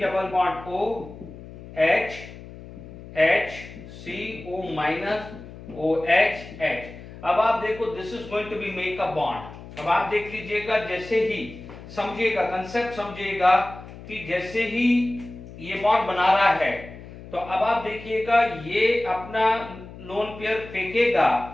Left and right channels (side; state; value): left; noise; hum, 15 dB below the sound